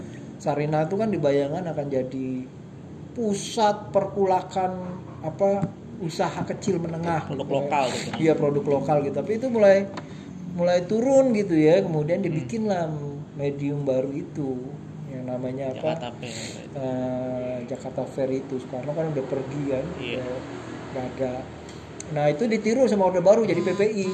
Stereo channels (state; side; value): identical; both; correlation 1.00